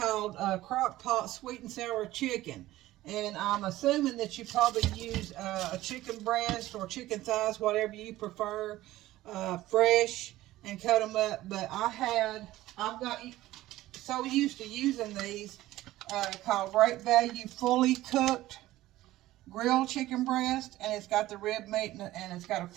Crock Pot sweet and sour chicken. And I'm assuming that you probably use a chicken breast or chicken thighs, whatever you prefer, fresh, and cut them up. But I've got so used to using these called Great Value fully cooked grilled chicken breast, and it's got the rib meat and it's got a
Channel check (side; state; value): left; quieter; 16.1 dB